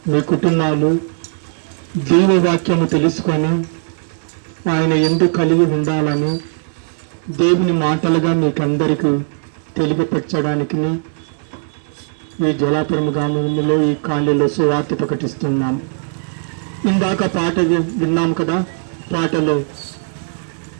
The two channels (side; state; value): left; silent; 61 dB below the other